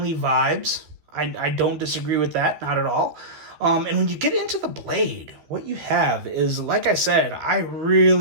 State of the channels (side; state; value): left; late; 13 ms